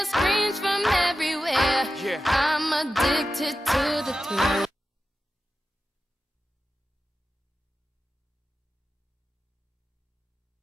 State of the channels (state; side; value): normal; both; correlation 0.93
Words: screams from everywhere. I'm addicted to the thrill.